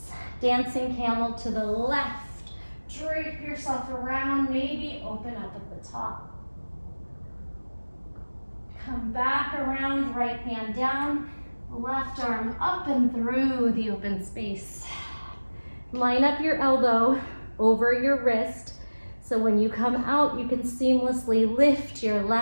Dancing camel to the left. Drape yourself around, maybe open up at the top. Come back around, right hand down, left arm up and through the open space. Line up your elbow over your wrist, so when you come out, you can seamlessly lift your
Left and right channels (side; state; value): both; inverted; correlation -1.00